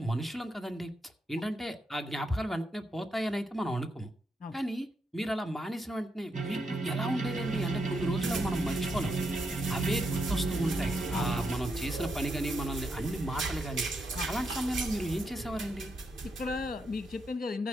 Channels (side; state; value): both; normal; correlation 0.81